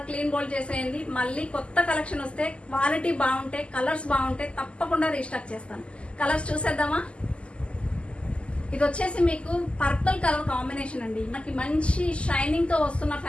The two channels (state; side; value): late; right; 0.055 ms